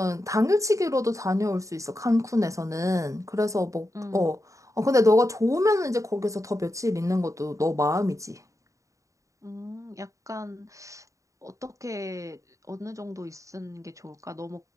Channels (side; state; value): left; late; 0.16 ms